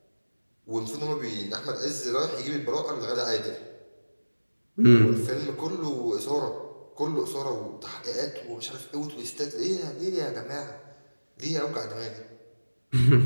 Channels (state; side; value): inverted; both; correlation -1.00